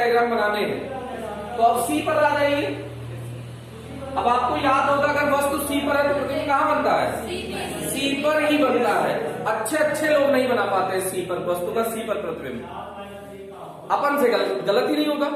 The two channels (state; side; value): identical; both; correlation 1.00